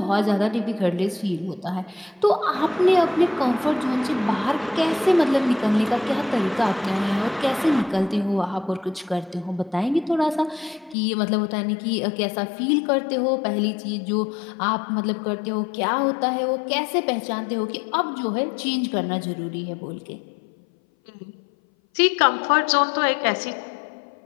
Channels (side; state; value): right; drops out; at 11.0 s